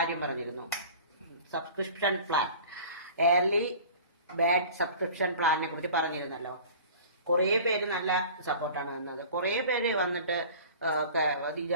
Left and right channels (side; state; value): both; inverted; correlation -0.41